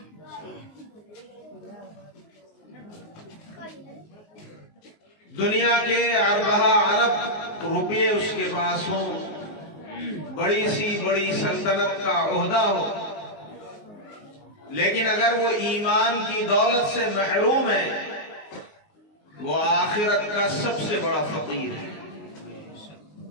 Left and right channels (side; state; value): right; late; 19 ms